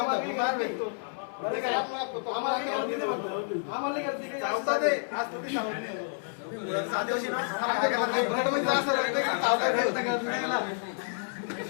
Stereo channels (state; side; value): silent; right; 58 dB below the other